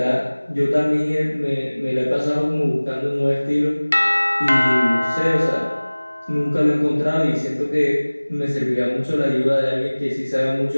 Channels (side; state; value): both; inverted; correlation -1.00